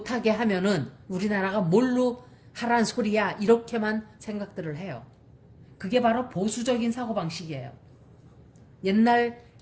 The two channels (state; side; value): identical; both; correlation 1.00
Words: 하면은 우리나라가 뭘로 하란 소리야? 이렇게만 생각들을 해요. 그게 바로 보수적인 사고방식이에요. 옛날